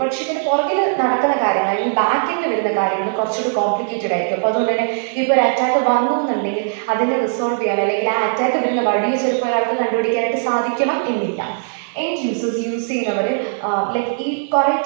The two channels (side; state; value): left; silent; digital silence